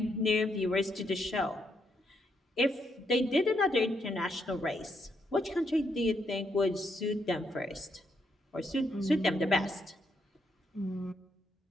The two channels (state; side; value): normal; both; correlation 0.77